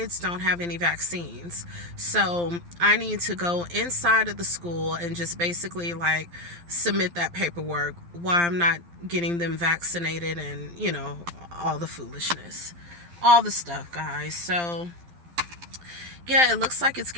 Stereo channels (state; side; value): late; left; 12 ms